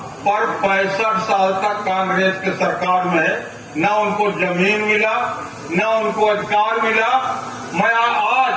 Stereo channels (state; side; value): identical; both; correlation 1.00